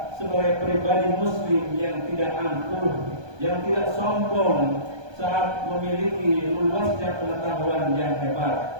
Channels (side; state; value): left; late; 1.2 ms